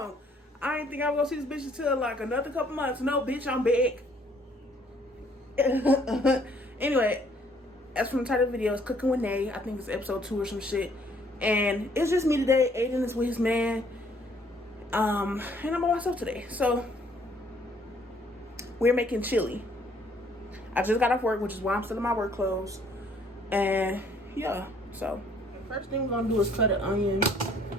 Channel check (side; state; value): both; normal; correlation 0.63